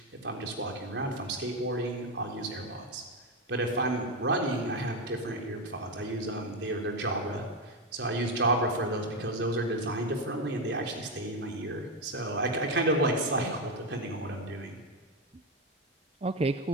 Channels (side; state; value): both; normal; correlation 0.11